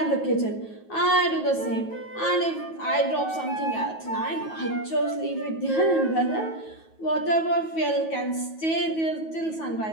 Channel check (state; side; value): late; right; 9.3 ms